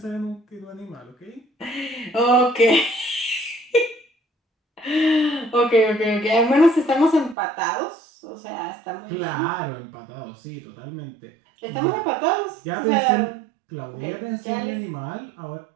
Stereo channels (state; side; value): drops out; left; at 7.4 s